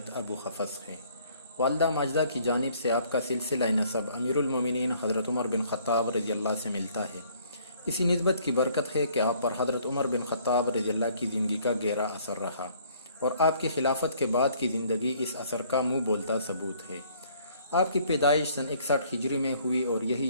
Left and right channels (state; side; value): inverted; both; correlation -0.61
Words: ابو حفص ہے۔ والدہ ماجدہ کی جانب سے آپ کا سلسلہ نسب امیر المومنین حضرت عمر بن خطاب رضی اللہ سے ملتا ہے۔ اسی نسبت کی برکت ہے کہ آپ پر حضرت عمر بن خطاب رضی اللہ کی زندگی کا گہرا اثر رہا اور آپ کی خلافت کے بعد کی زندگی اس اثر کا منہ بولتا ثبوت ہے۔ آپ کی پیدائش سن 61 ہجری میں ہوئی اور